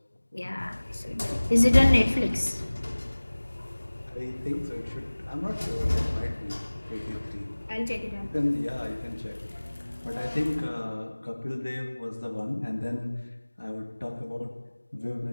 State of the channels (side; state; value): both; inverted; correlation -1.00